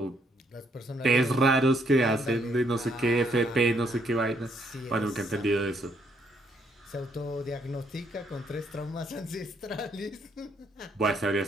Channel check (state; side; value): normal; both; correlation 0.71